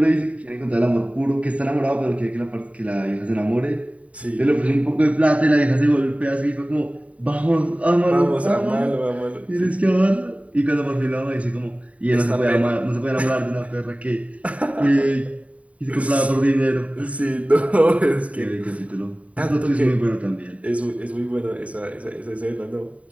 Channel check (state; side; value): late; left; 0.067 ms